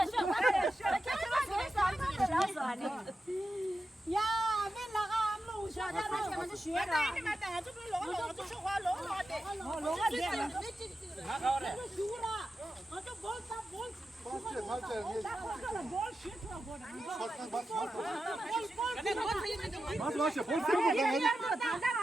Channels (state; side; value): normal; both; correlation 0.91